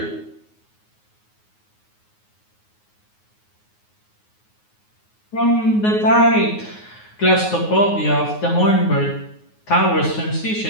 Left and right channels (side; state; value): right; late; 9.5 ms